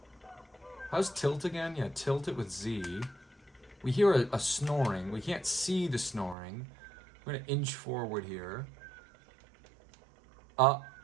How's tilt again? Yeah, tilt it with Z. We hear a snoring. We can't see the snoring. We're gonna inch forward here.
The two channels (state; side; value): drops out; left; at 6.4 s